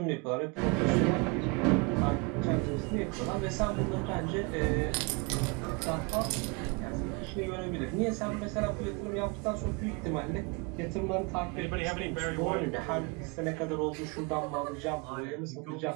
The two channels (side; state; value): left; quieter; 30.5 dB